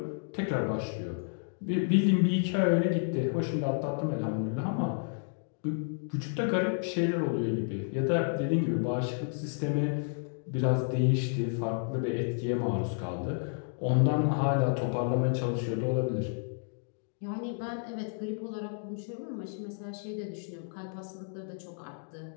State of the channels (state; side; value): silent; right; digital silence